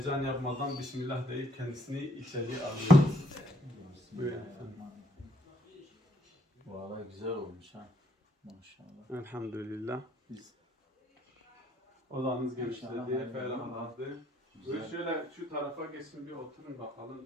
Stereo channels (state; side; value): normal; both; correlation 0.68